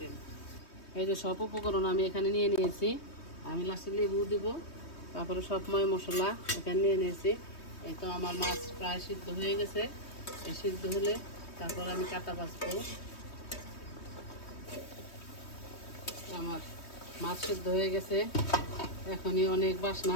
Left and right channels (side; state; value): right; late; 3.2 ms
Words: এই যে সব উপকরণ আমি এখানে নিয়ে নিয়েছি। আমি লাস্টে লেবু দিব, তারপরে সব মশলা এখানে নিয়ে নিয়েছি। এই তো আমার মাছ প্রায় সিদ্ধ হয়ে গেছে। এই সিদ্ধ হলে তারপর আমি কাটা বাছবো। আমার মাছ সিদ্ধ হয়ে গেছে, এখনই অনেক